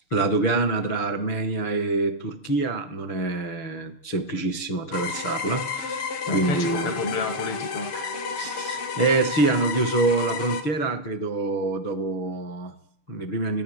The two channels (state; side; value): late; right; 6.7 ms